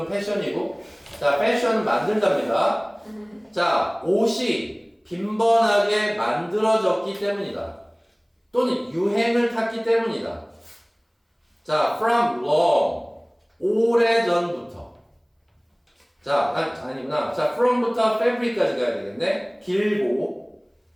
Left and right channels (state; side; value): identical; both; correlation 1.00